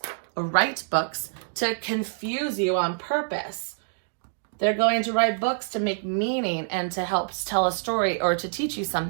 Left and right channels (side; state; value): left; silent; digital silence